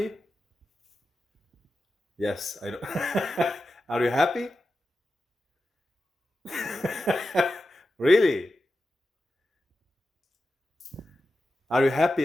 Yes, I know. Are you happy? Really? Are you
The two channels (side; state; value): both; normal; correlation 0.92